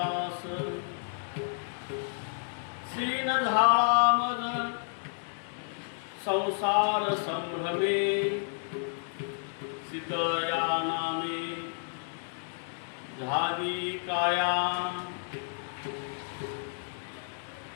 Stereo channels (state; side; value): silent; right; digital silence